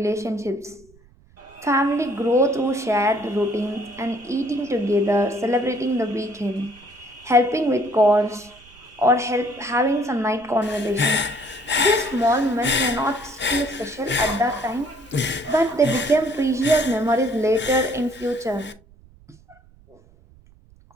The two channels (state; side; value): noise; right; rumble, 27 dB below the sound